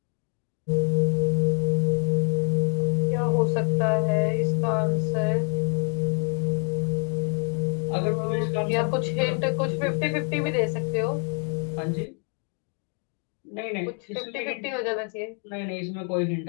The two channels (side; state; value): right; quieter; 39.1 dB